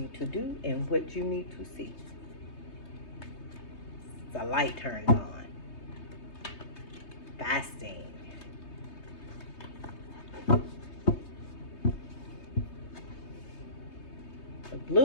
to do and what you need to see. The light turned on. Fasting. The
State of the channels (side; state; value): right; late; 3.2 ms